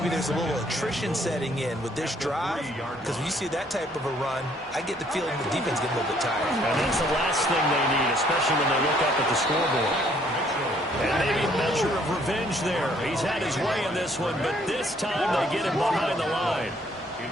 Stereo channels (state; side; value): normal; both; correlation 0.64